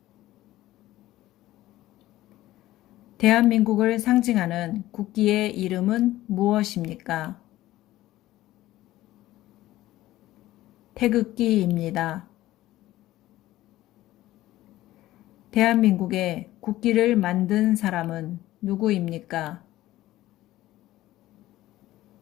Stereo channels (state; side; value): quieter; right; 15.7 dB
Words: 대한민국을 상징하는 국기의 이름은 무엇입니까? 태극기입니다. 대한민국의 국기를 만든 사람은 누구입니까?